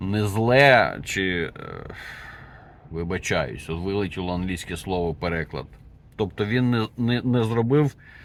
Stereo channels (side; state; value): both; identical; correlation 1.00